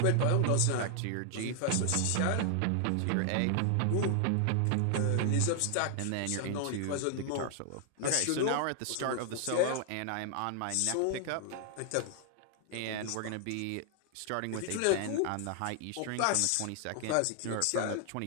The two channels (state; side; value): different; both; correlation 0.00